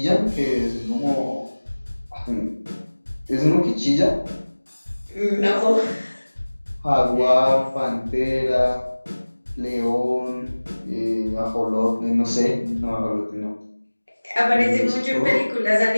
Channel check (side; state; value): both; inverted; correlation -1.00